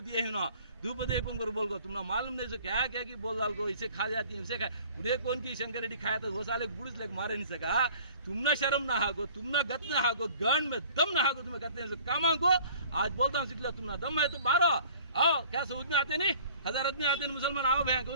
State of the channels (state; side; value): inverted; both; correlation -0.50